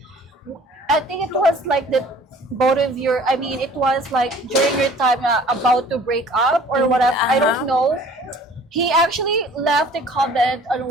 it was like the both of your. I mean, it was like during your time about to break up or whatever. I don't know. He actually left a comment on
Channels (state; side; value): normal; both; correlation 0.50